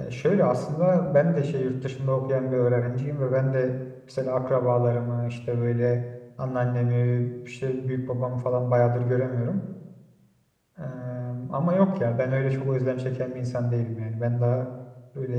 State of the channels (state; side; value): identical; both; correlation 1.00